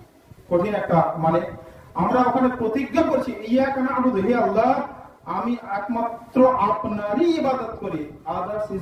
কঠিন একটা মানে? আমরা ওখানে প্রতিজ্ঞা করছি ইয়্যাকা না'বুদু, হে আল্লাহ আমি একমাত্র আপনারই ইবাদত করি, আদার্স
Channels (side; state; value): both; identical; correlation 1.00